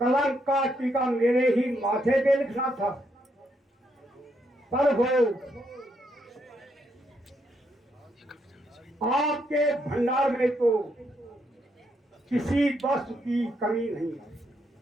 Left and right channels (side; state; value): both; normal; correlation 0.77